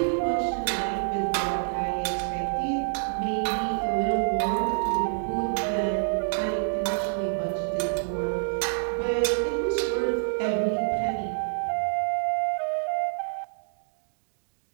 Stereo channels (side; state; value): left; silent; digital silence